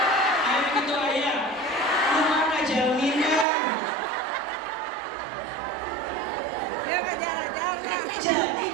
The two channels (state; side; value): drops out; left; at 3.5 s